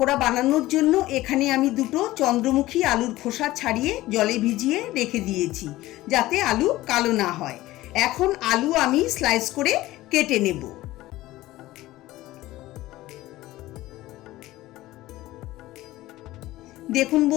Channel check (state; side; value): quieter; right; 16.9 dB